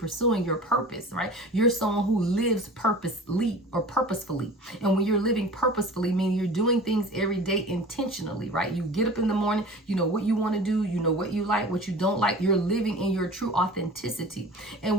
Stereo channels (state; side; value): normal; both; correlation 0.39